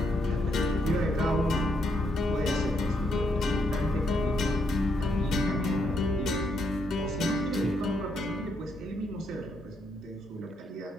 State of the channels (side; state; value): both; normal; correlation 0.77